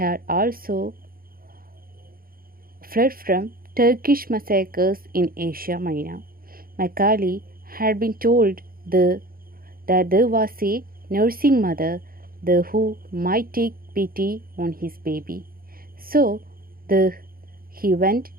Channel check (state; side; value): late; left; 0.42 ms